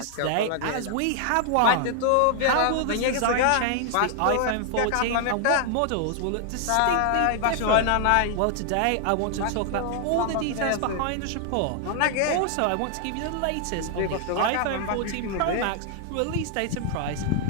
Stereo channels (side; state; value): both; different; correlation 0.00